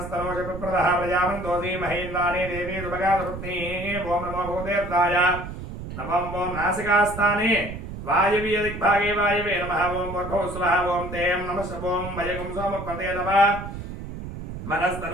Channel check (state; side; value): noise; right; rumble, 9 dB below the sound